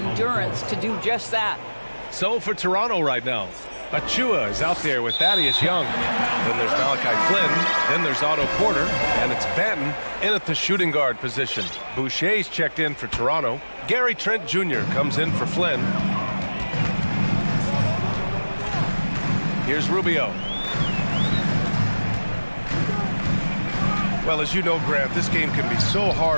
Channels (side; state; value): both; inverted; correlation -1.00